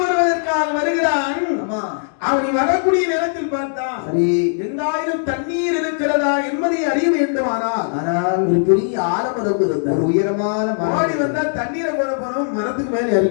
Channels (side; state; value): right; silent; digital silence